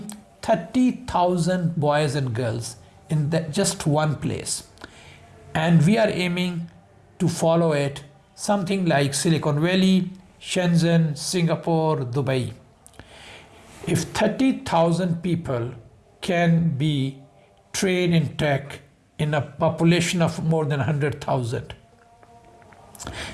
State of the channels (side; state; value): both; identical; correlation 1.00